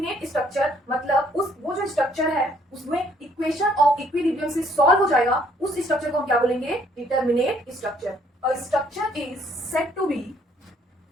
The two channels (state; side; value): normal; both; correlation 0.64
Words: स्ट्रक्चर मतलब वो जो स्ट्रक्चर है उसमें इक्वेशन ऑफ इक्विलिब्रियम से सॉल्व हो जाएगा, उस स्ट्रक्चर को हम क्या बोलेंगे, determinate structure. A structure is said to be